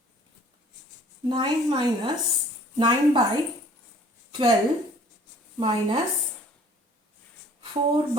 Nine by 12 minus 4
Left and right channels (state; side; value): normal; both; correlation 0.53